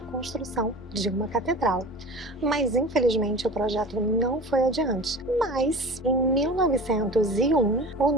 construção de uma catedral. Mas, infelizmente, o projeto não foi adiante. Mas, em 1901, o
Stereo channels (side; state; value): both; normal; correlation 0.36